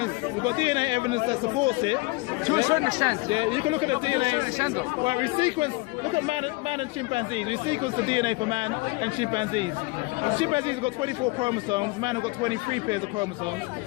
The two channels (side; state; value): right; quieter; 24.5 dB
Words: We've got DNA evidence that supports it. To a certain extent. Yeah, you can look at the DNA. To a certain extent, though. Well, we sequence. Look at man and chimpanzees. We sequence the DNA for man and chimpanzees. Chimpanzees have got 24 chromosomes. Man have got 23 pairs of chromosomes.